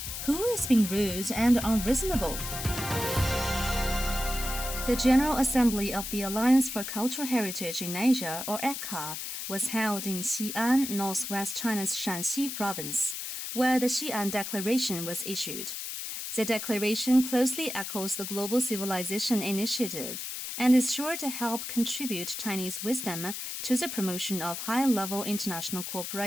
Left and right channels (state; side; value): noise; left; hiss, 6 dB below the sound